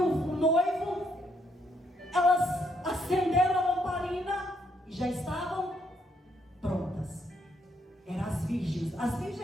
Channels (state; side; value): normal; both; correlation 0.73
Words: o noivo, elas acenderam a lamparina e já estavam prontas. Eram as virgens. As virgens